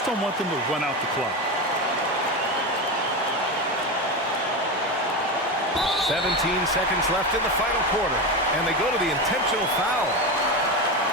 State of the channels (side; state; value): both; normal; correlation 0.18